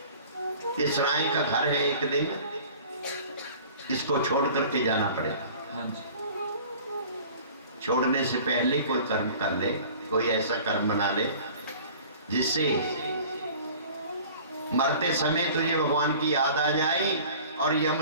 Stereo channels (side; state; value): both; inverted; correlation -0.45